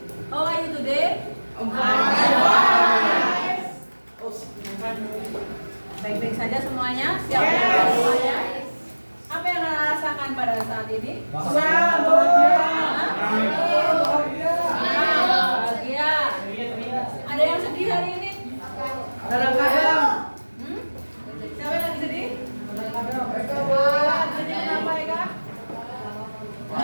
How are you today? Baik-baik saja semuanya? Siap belajar semuanya? Apa yang anak rasakan pada saat ini? Bahagia. Ada yang sedih hari ini? Kadang-kadang. Siapa yang lagi sedih? Sedih kenapa ya kak?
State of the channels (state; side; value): inverted; both; correlation -1.00